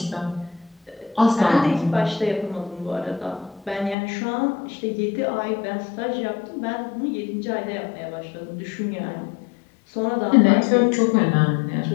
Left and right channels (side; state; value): right; drops out; at 4.0 s